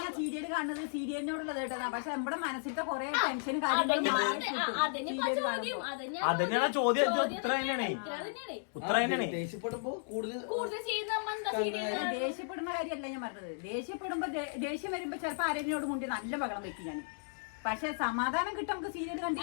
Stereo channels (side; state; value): right; silent; digital silence